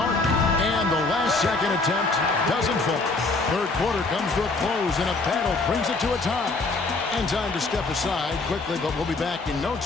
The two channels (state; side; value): quieter; right; 3.5 dB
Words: And the last second attempt doesn't fall. Third quarter comes to a close, and a battle brings it to a tie. And time to step aside quickly, but we'll be back in no